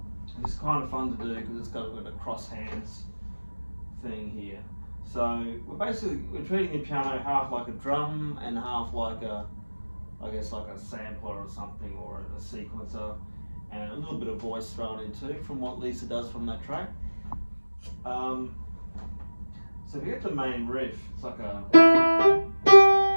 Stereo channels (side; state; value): both; inverted; correlation -1.00